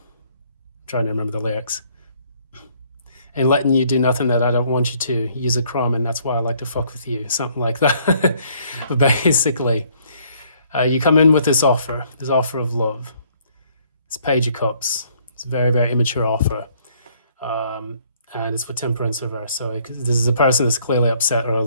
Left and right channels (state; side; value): inverted; both; correlation -0.63